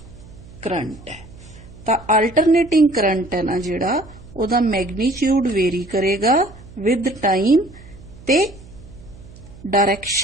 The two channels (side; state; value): right; noise; hum, 20 dB below the sound